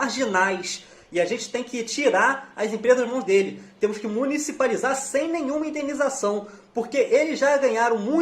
E a gente tem que tirar as empresas das mãos dele. Temos que municipalizar sem nenhuma indenização, porque eles já ganharam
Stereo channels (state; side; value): identical; both; correlation 1.00